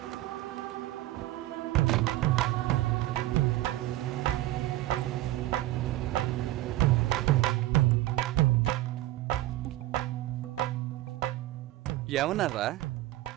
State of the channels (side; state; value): left; quieter; 16.1 dB